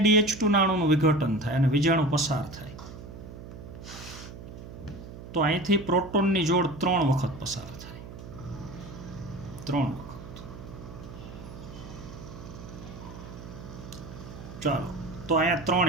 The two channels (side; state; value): right; noise; hum, 13 dB below the sound